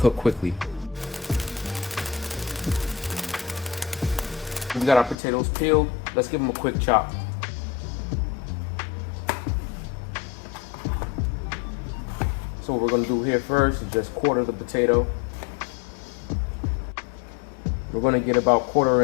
quickly. We got our potatoes peeled. Let's give them a quick chop. So what we're going to do here first is just quarter the potato. We're going to get about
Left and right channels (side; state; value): right; drops out; at 5.2 s